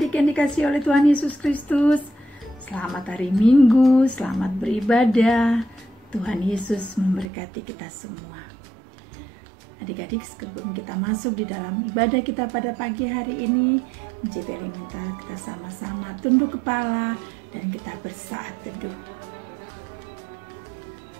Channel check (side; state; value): left; drops out; at 7.2 s